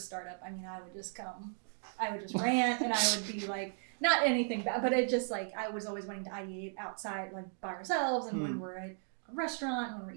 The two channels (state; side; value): silent; left; 54 dB below the other